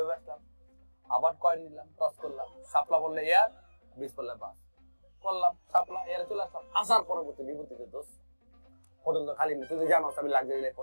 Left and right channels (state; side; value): inverted; both; correlation -1.00